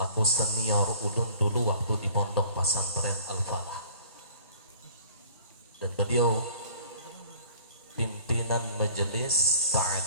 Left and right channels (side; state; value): both; inverted; correlation -0.49